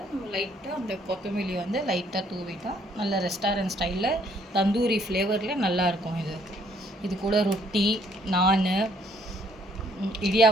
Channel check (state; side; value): normal; both; correlation 0.65